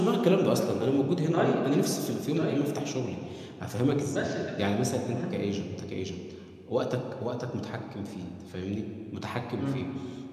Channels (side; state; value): both; identical; correlation 1.00